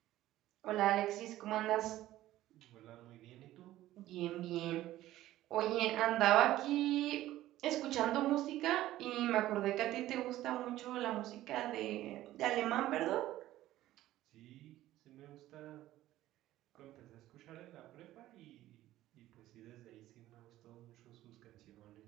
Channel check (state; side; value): quieter; left; 14.8 dB